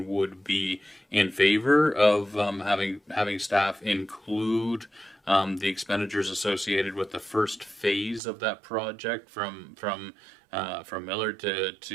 would be in favor of having staff include the expenditures associated with the first phase of that project from Millard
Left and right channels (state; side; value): drops out; left; at 8.2 s